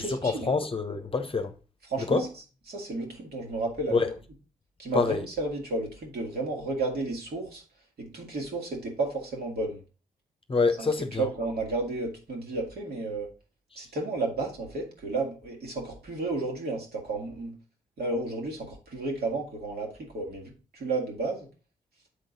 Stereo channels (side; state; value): both; normal; correlation 0.45